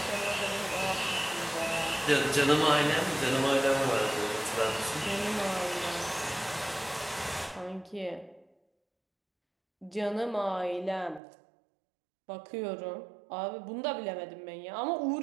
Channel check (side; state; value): left; drops out; at 11.2 s